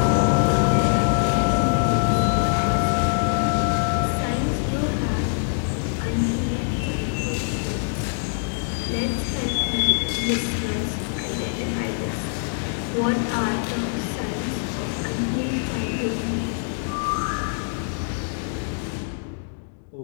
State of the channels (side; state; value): right; silent; digital silence